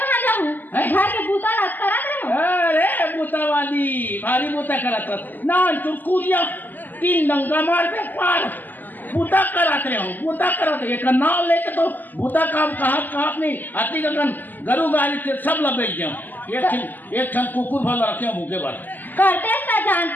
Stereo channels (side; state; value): right; late; 0.086 ms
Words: जाऊँ घर के बूता करा रहे अरे बूता वाली भारी बूता करा ना चुटकुरिया 3 डंगा मारते पार बूता कराते हो बूता कराते एक नाव लेके तो बूता काम कहा नहीं आती गगन गरु गाली से सब लबेच जाओ एक क्षण कुकुर भल रखे हो भूखे भर करते ता